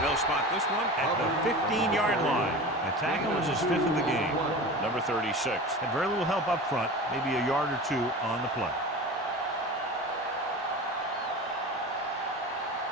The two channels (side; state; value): both; normal; correlation 0.33